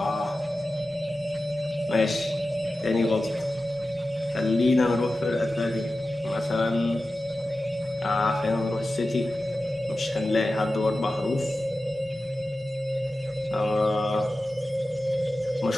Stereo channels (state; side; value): normal; both; correlation 0.94